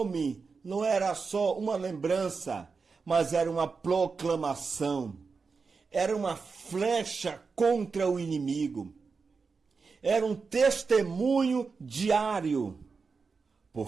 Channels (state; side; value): quieter; left; 4.8 dB